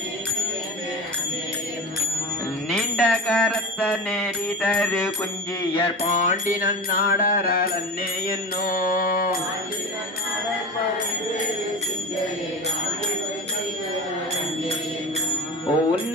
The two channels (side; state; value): both; normal; correlation 0.30